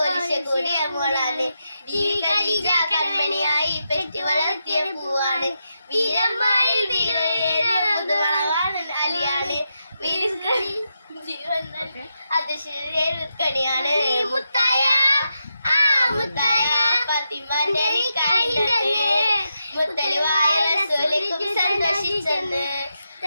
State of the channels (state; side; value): inverted; both; correlation -0.86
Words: കൂടിയ മോളാണ് ഈ ഖദീജ കൺമണിയായി പെറ്റു വളർത്തിയ പൂവാണ് വീരന്മാരിൽ വീരവാണ് അലിയാണ് ജീവൻ അത് ശരീരക്കണിയാണ് മുത്തായ മുത്തായ ഫാത്തിമാന്റെ നിക്കാഹിണ്ടെന്ന് മുത്തലുവായ റസൂലിക്കും സന്തോഷിച്ചെന്ന്